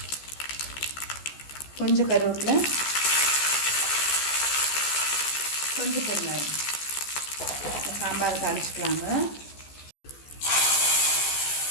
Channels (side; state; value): right; late; 14 ms